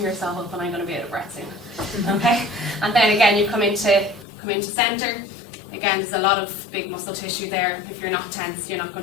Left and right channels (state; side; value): drops out; right; at 4.2 s